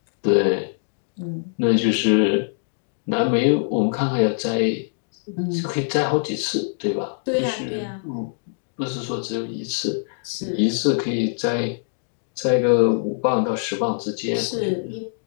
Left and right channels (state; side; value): silent; right; digital silence